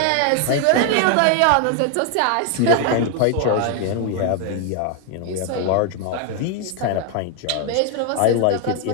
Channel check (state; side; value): different; both; correlation 0.00